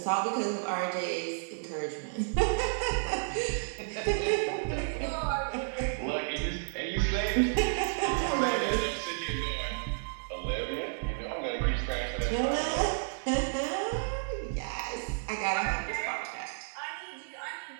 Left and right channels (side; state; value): left; silent; 57 dB below the other